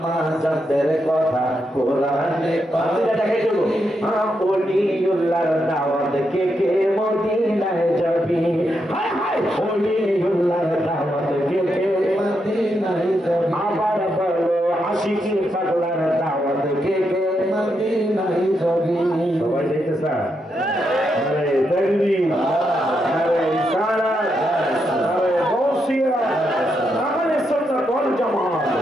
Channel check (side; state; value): both; normal; correlation 0.82